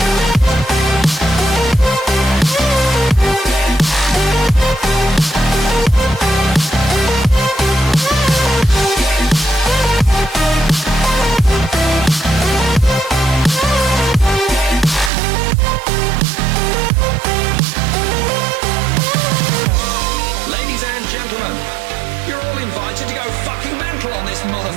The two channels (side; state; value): left; drops out; at 15.1 s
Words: Ladies and gentlemen, you're all invited to go fucking mental on this